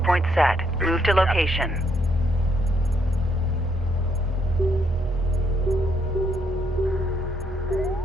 set. Move to location.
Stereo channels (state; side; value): normal; both; correlation 0.73